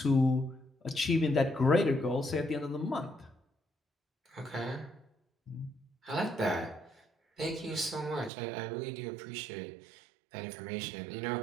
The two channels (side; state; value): left; drops out; at 8.3 s